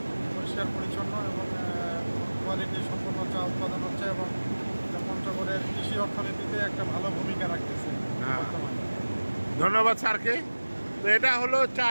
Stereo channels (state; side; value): inverted; both; correlation -1.00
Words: পরিষ্কার পরিচ্ছন্ন এবং কোয়ালিটি সম্পন্ন চা উৎপাদন হচ্ছে এবং পঞ্চগড়ের কৃষি অর্থনীতিতে একটা ভালো ভূমিকা রাখতেছে বর্তমানে। ধন্যবাদ স্যারকে। তো এটা হলো চা।